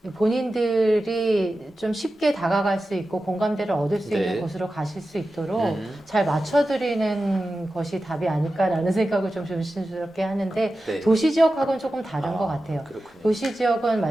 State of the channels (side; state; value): both; normal; correlation 0.93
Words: 본인들이 좀 쉽게 다가갈 수 있고 공감대를 얻을 수 네. 있는 곳으로 가실 수 있도록 잘 맞춰드리는 것이 답이 아닐까라는 생각을 좀 조심스럽게 하는데 네. 도시 지역하고는 조금 다른 것 같아요. 그렇군요. 도시 지역은